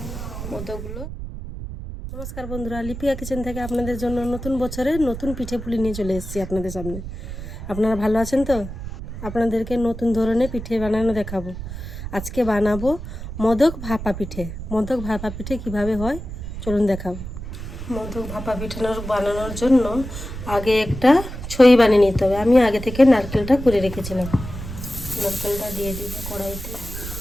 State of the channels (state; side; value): noise; right; rumble, 9 dB below the sound